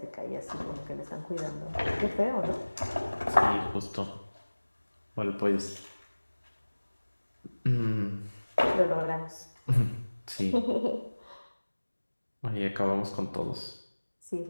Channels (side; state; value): both; inverted; correlation -1.00